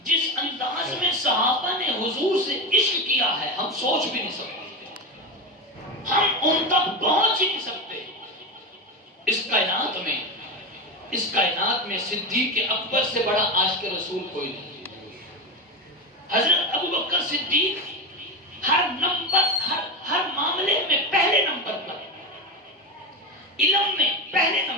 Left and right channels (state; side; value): normal; both; correlation 0.18